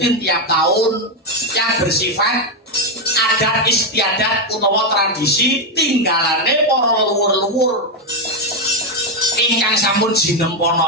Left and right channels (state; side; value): normal; both; correlation 0.05